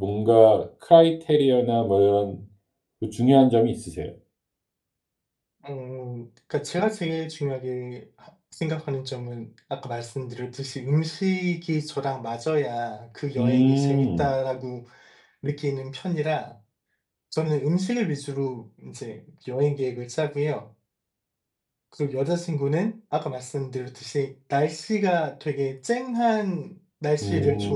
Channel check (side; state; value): both; identical; correlation 1.00